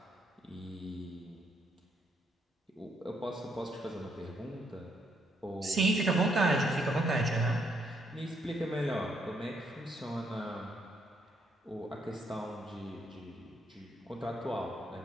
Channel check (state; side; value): normal; both; correlation 0.73